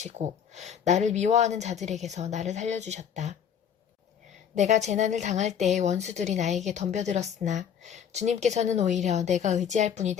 나를 미워하는 자들에게서 나를 살려주셨다. 내가 재난을 당할 때에 원수들이 나에게 덤벼들었으나 주님께서는 오히려 내가 의지할 분이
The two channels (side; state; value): right; quieter; 8.2 dB